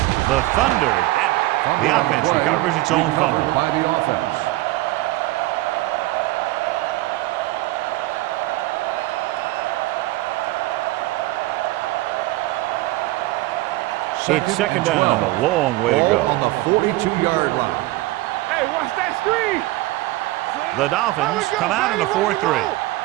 The Thunder have it. The offense recovers its own fumble. By the offense. It's second down and a long way to go. On the 42-yard line. Hey, watch that screen. The Dolphins come out in a 4-3.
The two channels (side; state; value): left; quieter; 18.6 dB